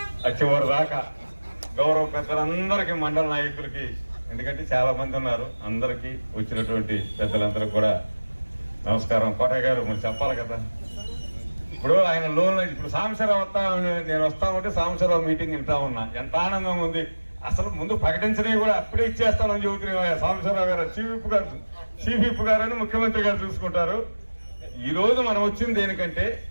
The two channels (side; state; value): both; inverted; correlation -1.00